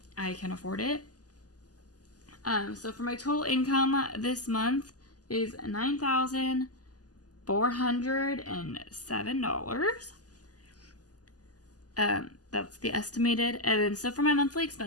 I can afford it. So for my total income this month is $9,407. That's the estimated. And then so for my monthly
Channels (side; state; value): right; late; 0.67 ms